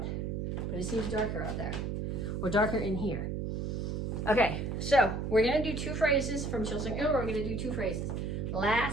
but it seems darker out there. Or darker in here. Okay, so we're gonna do 2 phrases from Petsching. We're gonna do 2 phrases.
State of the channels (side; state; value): right; noise; hum, 2 dB below the sound